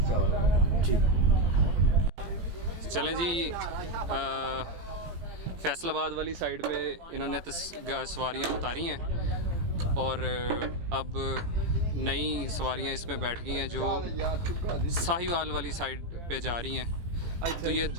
चावल। ठीक। चलें जी, फैसलाबाद वाली साइड पे इन्होंने सवारियाँ उतारी हैं और अब नई सवारियाँ इसमें बैठ गई हैं जो साहिवाल वाली साइड पे जा रही हैं। तो ये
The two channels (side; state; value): left; late; 18 ms